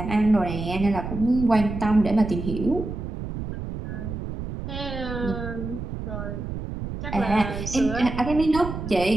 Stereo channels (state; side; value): noise; right; rumble, 6 dB below the sound